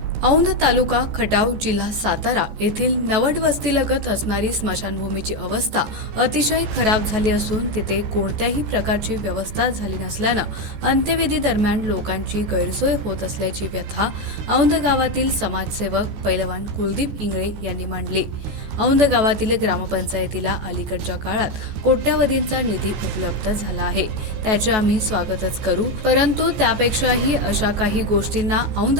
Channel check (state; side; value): late; left; 14 ms